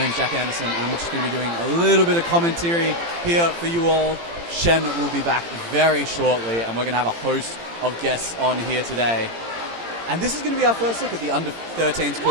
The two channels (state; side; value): late; left; 18 ms